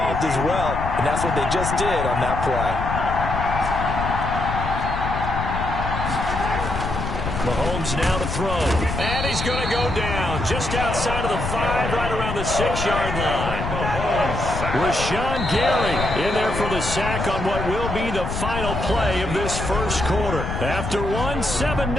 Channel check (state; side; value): noise; left; rumble, 4 dB below the sound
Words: as well. And that's what they just did on that play. Mahomes now to throw. And he's going to go down just outside of the 5, right around the 6-yard line. Rashawn Gary in there for the sack on what will be the final play of this first quarter. After one,